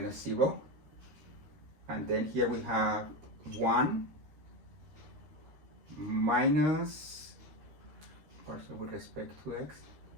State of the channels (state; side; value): late; left; 13 ms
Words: 0, and then here we have 1 minus, partial with respect to x,